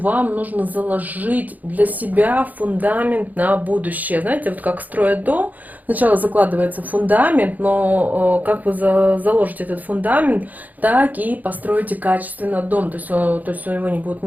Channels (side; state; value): left; late; 0.080 ms